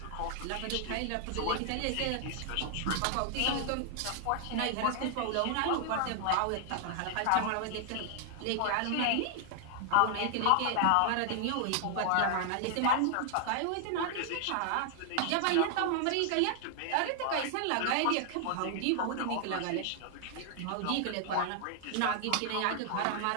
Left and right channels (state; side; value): different; both; correlation 0.00